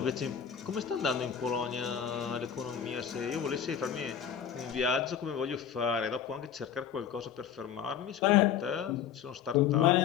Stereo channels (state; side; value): quieter; right; 8.5 dB